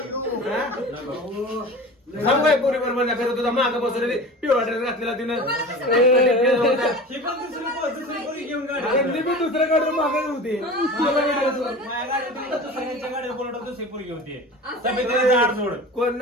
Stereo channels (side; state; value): both; normal; correlation 0.35